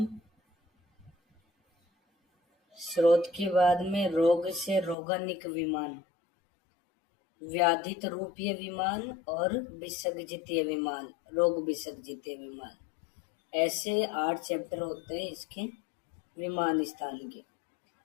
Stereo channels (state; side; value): drops out; right; at 5.0 s